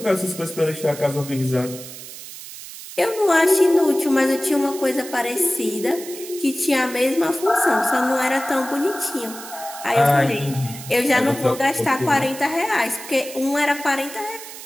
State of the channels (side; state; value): right; noise; hiss, 13 dB below the sound